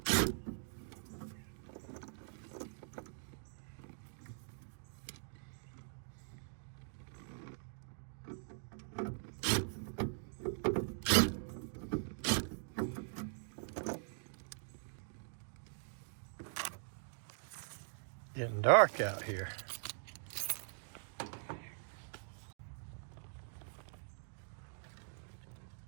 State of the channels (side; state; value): left; silent; digital silence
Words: Getting dark out here.